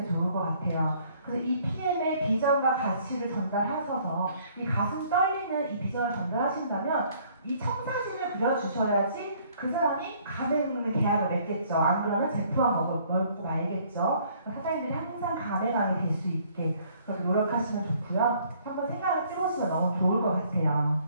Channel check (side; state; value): both; inverted; correlation -0.61